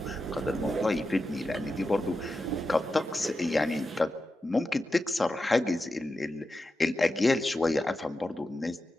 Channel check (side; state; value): both; normal; correlation 0.90